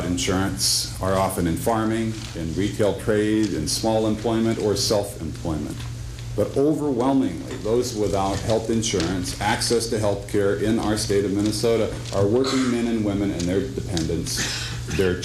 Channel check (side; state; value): both; identical; correlation 1.00